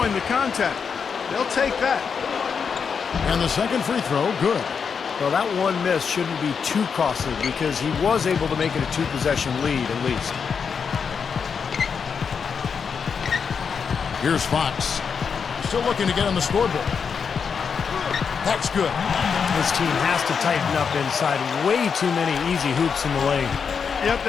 the contact. They'll take that. And the second free throw, good. Well, that one miss shouldn't be too costly because he was able to make it a 2-possession lead at least. Here's Fox. Still looking to get on the scoreboard. That's good. This team has to tighten up inside. Way too many easy hoops in the lane. Yep,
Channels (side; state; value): right; quieter; 6.2 dB